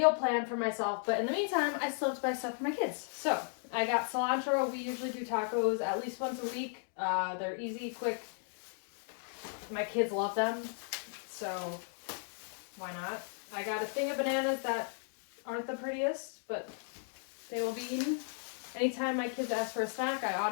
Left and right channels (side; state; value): right; silent; 54 dB below the other